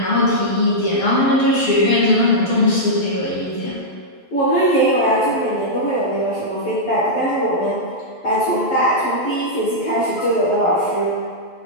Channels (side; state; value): right; late; 12 ms